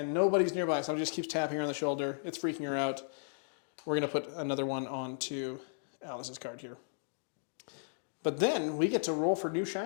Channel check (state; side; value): silent; right; digital silence